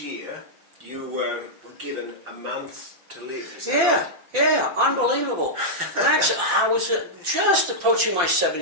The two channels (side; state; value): left; late; 5.8 ms